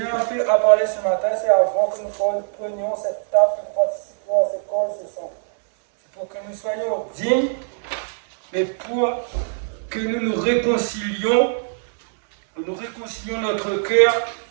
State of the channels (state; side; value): silent; left; 64 dB below the other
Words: a parlé ce matin, c'est avant que nous prenions cette table, que nous participions à ce corps ce sang. C'est pour que nous soyons dignes, mais pour que nous réconcilions notre cœur